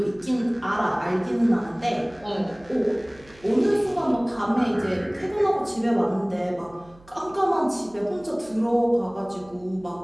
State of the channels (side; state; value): right; noise; hum, 26 dB below the sound